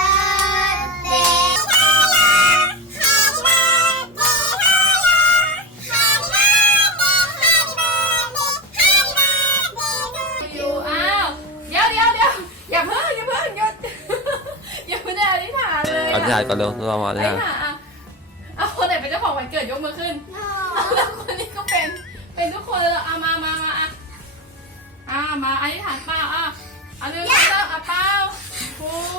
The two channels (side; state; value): both; normal; correlation 0.20